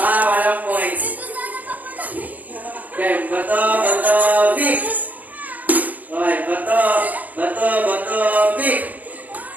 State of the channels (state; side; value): late; left; 0.079 ms